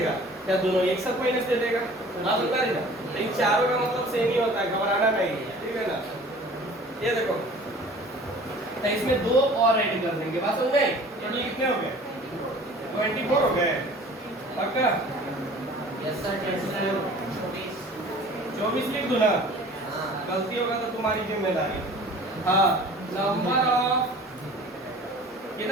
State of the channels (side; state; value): both; normal; correlation 0.46